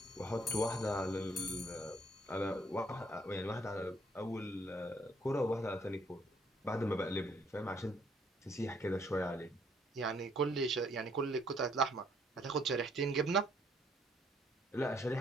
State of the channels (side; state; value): both; normal; correlation 0.66